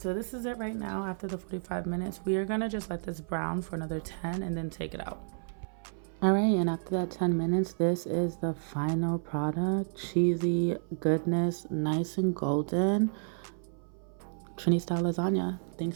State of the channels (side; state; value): left; silent; 57 dB below the other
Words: this is it right now after the 45 minutes. We are gonna just let this brown for another 10 and then take it out. All right, and after that 10 minutes, this is the final product. Cheesy goodness, nice and golden. Trini style lasagna.